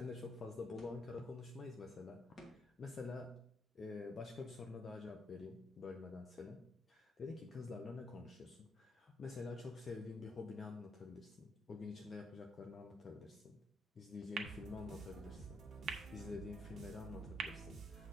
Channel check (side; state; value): both; normal; correlation 0.76